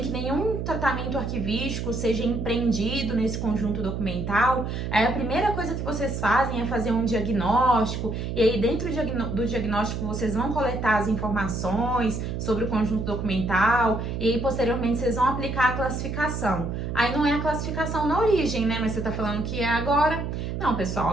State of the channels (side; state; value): right; noise; hum, 4 dB below the sound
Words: que nenhum tratamento arquivístico seja empreendido nesse conjunto documental, aí a primeira coisa que vocês fazem é fazer um diagnóstico, e aí dentro do diagnóstico vocês vão coletar as informações sobre o conjunto documental, e aí posteriormente vocês vão aplicar a classificação. Aí não é a classificação na origem, né? Mas você tá falando que é agora. Não, pessoal,